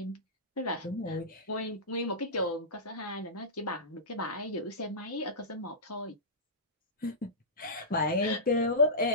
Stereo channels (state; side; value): normal; both; correlation -0.18